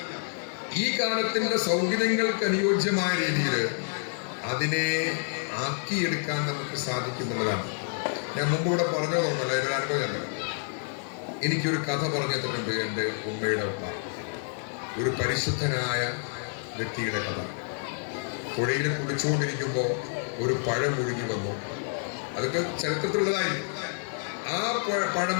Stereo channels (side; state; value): right; silent; 59 dB below the other